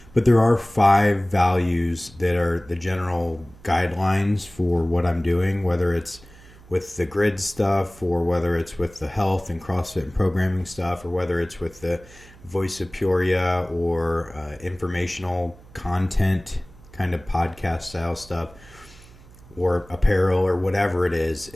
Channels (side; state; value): right; noise; hum, 23 dB below the sound